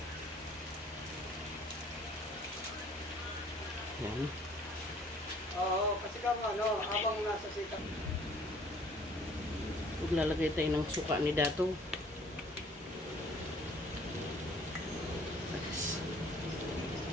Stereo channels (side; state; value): both; normal; correlation 0.56